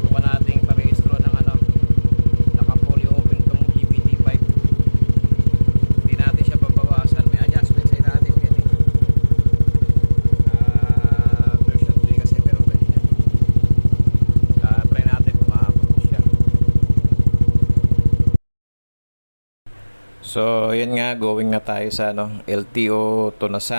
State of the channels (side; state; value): both; inverted; correlation -1.00